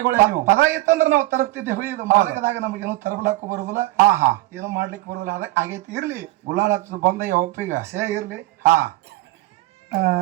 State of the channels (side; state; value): left; quieter; 18.0 dB